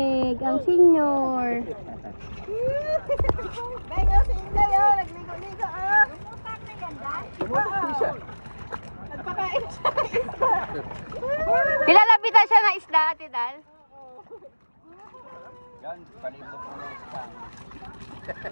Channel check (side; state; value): both; inverted; correlation -1.00